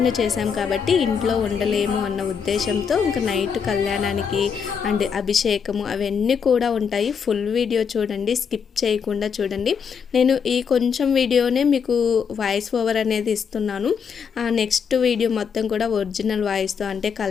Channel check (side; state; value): right; quieter; 6.6 dB